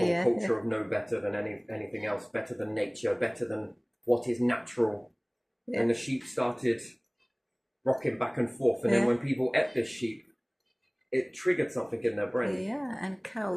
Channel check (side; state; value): both; identical; correlation 1.00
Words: culture of no better than anything else, better than nature, better than what is natural. And the sheep started rocking back and forth. And then when people ate this sheep, it triggered something in their brain. Yeah, and